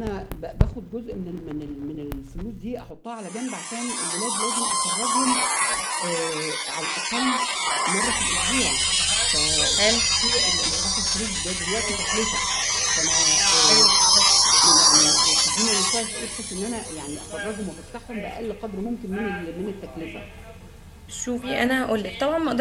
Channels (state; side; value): identical; both; correlation 1.00